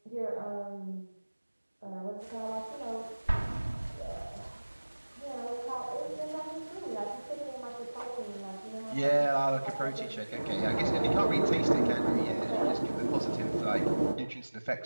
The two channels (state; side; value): inverted; both; correlation -1.00